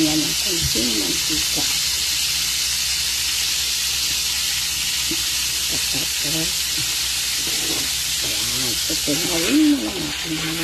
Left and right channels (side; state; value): both; identical; correlation 1.00